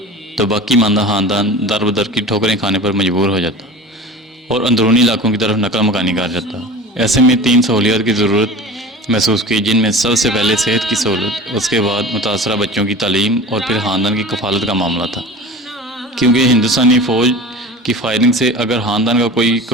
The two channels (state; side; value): normal; both; correlation 0.36